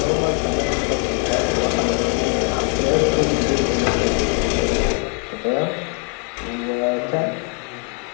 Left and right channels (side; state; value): right; quieter; 33.1 dB